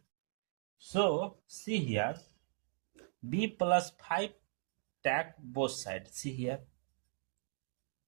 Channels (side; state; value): left; silent; digital silence